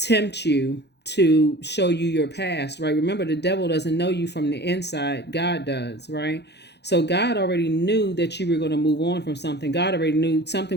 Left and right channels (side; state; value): right; late; 0.49 ms